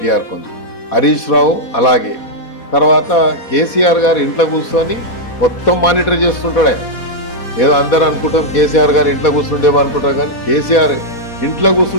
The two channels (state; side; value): late; right; 4.2 ms